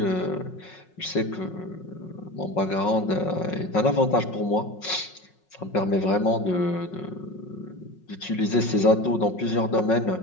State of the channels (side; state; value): right; late; 5.5 ms